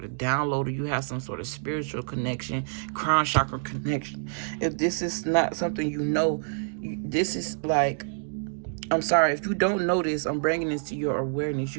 of download, or you have some sort of spiritual connection, crown chakra connection. If this is not something you know, this is like, I'm sorry, if you don't notice, I'm bringing this to your awareness.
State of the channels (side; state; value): left; silent; digital silence